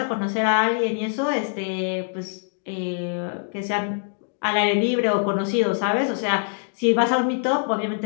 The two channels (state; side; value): silent; right; digital silence